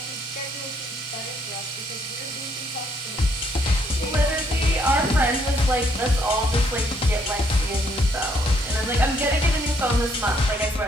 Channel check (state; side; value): normal; both; correlation 0.69